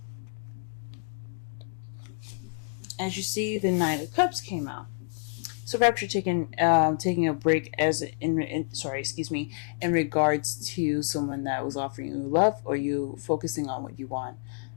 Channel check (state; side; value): quieter; right; 37.0 dB